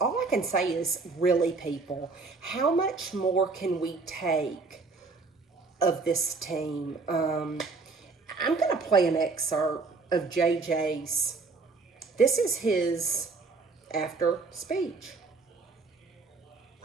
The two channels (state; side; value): quieter; left; 4.1 dB